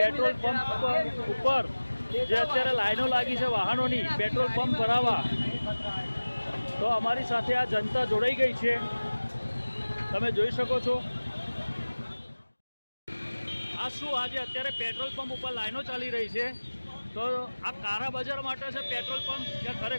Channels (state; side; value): inverted; both; correlation -1.00